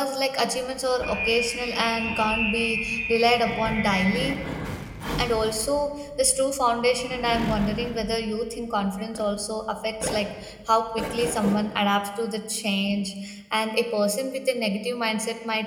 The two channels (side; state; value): both; identical; correlation 1.00